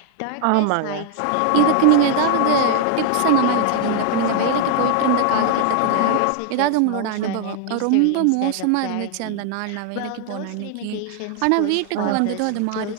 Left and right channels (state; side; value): different; both; correlation 0.00